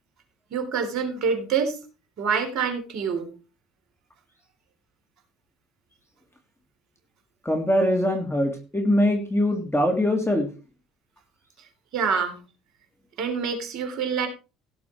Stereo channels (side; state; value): both; normal; correlation 0.62